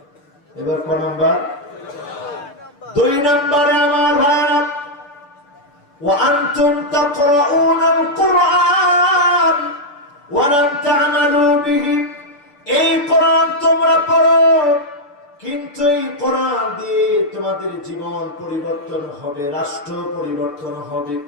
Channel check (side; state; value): right; late; 6.9 ms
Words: এবার কোন নাম্বার? 2 নম্বরে আমার ভাইরা, ওয়া আনতুম তাকরাউনাল কুরআন ওয়া লাম তা'মালু বিহি। এই কোরআন তোমরা পড়ো, কিন্তু এই কোরআন দিয়ে তোমাদের জীবন পরিবর্তন হবে, রাষ্ট্র পরিবর্তন হবে।